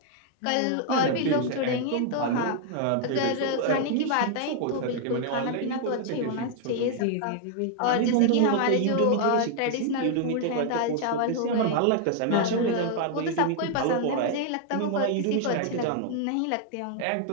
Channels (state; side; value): different; both; correlation 0.00